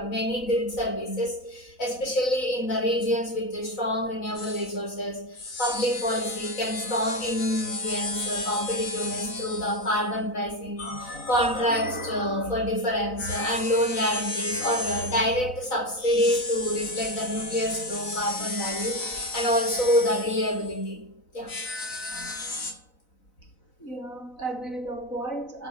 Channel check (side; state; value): right; late; 4.0 ms